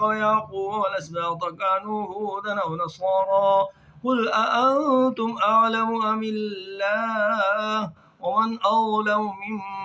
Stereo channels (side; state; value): both; identical; correlation 1.00